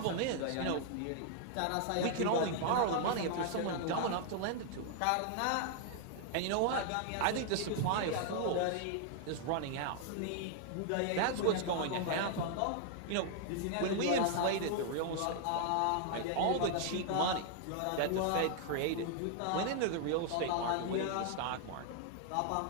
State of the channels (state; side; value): different; both; correlation 0.00